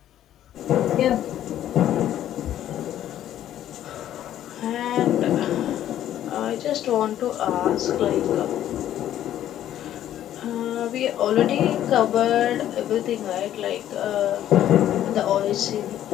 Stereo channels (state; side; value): quieter; right; 11.7 dB